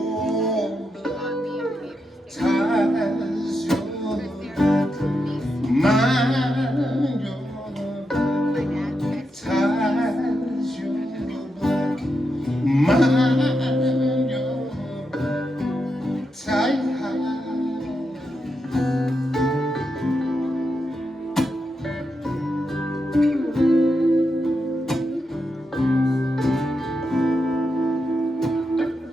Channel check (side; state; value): both; normal; correlation 0.85